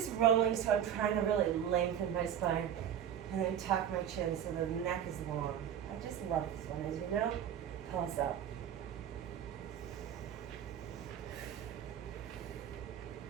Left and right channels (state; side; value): quieter; left; 9.6 dB